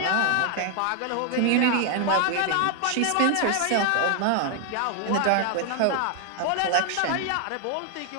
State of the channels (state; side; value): different; both; correlation 0.00